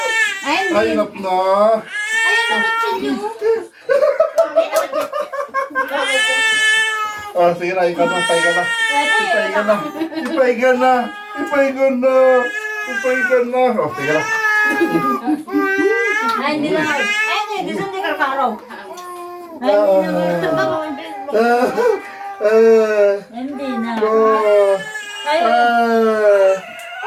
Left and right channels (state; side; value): identical; both; correlation 1.00